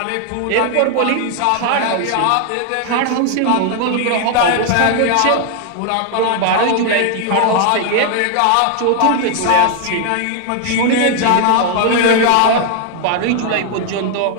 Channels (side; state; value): both; different; correlation 0.00